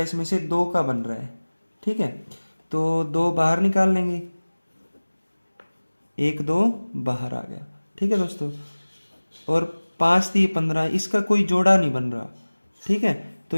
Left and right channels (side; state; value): both; inverted; correlation -1.00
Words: से 2 का बन रहा है। ठीक है, तो 2 बाहर निकाल लेंगे, 1 2 बाहर आ गया। ठीक है दोस्तों, और 5 3 15, इसका कोई जोड़ा नहीं बन रहा। ठीक है, तो